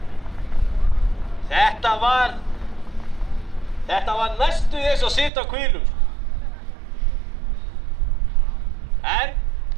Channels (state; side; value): drops out; left; at 5.3 s